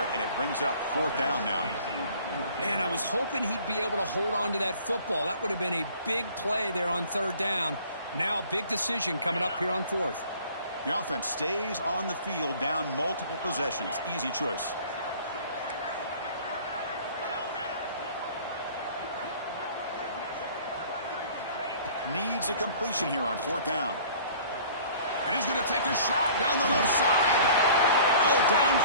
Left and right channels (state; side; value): inverted; both; correlation -0.50